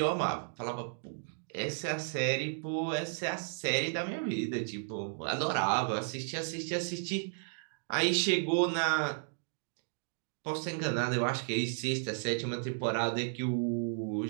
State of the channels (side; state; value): left; silent; digital silence